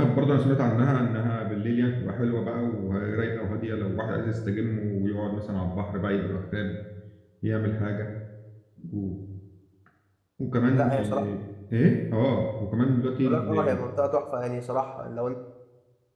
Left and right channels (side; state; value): both; identical; correlation 1.00